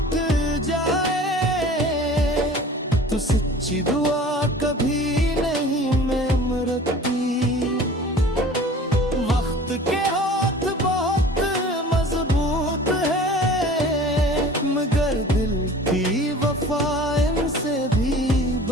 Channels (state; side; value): normal; both; correlation 0.44